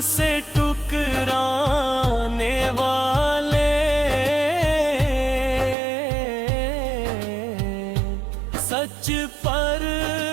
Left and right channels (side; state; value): left; drops out; at 5.8 s